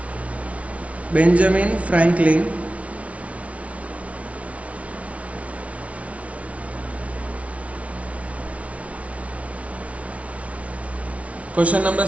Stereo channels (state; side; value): late; left; 0.065 ms